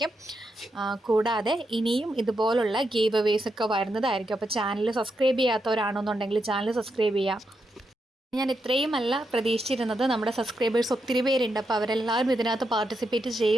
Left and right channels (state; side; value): normal; both; correlation 0.83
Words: കൂടാതെ ഇനിയും ഇതുപോലുള്ള ഗീവ് അവേസ് ഒക്കെ വരുന്നതായിരിക്കും. അപ്പോൾ ചാനൽ സബ്സ്ക്രൈബ് ചെയ്യാത്തവരാണെന്നുണ്ടെങ്കിൽ ചാനൽ സബ്സ്ക്രൈബ് ചെയ്യുക. ഞാൻ ഇത്രയുമല്ല പ്രതീക്ഷിച്ചിരുന്നത്. നമ്മുടെ സബ്സ്ക്രൈബേഴ്സ് ഒത്തിരി പേരുണ്ട്. അപ്പോൾ അവരെല്ലാവരും ഇതിനകത്ത് പാർട്ടിസിപ്പേറ്റ്